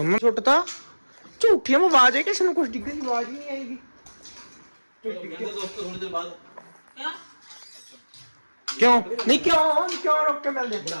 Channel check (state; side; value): inverted; both; correlation -1.00